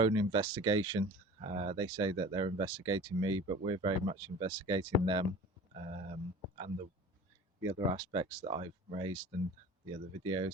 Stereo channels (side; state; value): both; normal; correlation 0.39